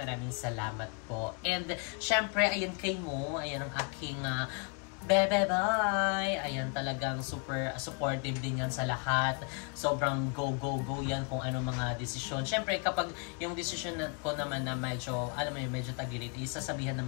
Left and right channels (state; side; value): quieter; right; 36.9 dB